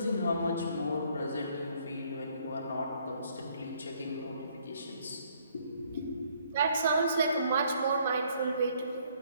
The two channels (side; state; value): both; inverted; correlation -0.65